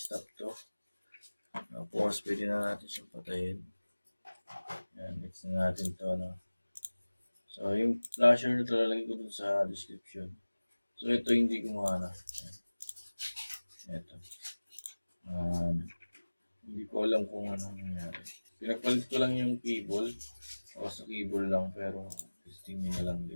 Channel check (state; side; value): inverted; both; correlation -1.00